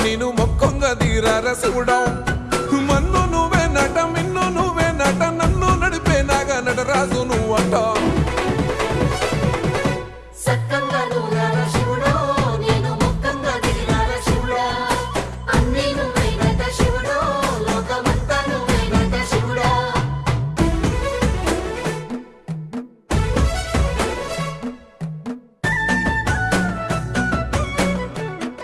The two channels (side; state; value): both; identical; correlation 1.00